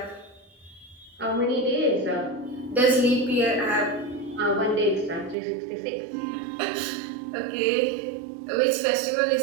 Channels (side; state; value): left; drops out; at 5.4 s